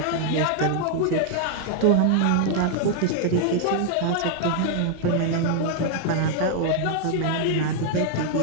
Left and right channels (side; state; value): both; different; correlation 0.00